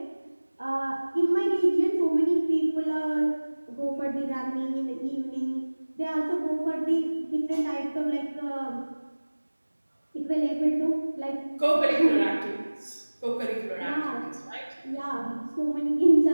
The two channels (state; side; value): inverted; both; correlation -1.00